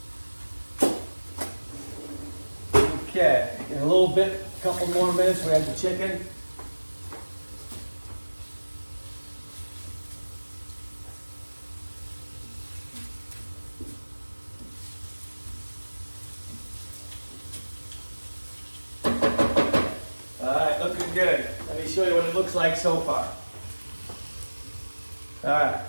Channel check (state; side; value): inverted; both; correlation -1.00